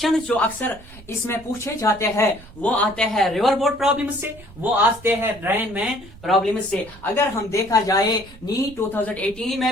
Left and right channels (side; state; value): right; noise; rumble, 20 dB below the sound